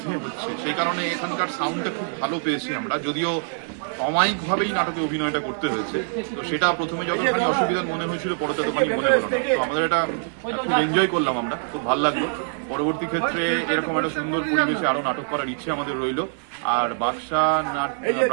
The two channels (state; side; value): silent; left; digital silence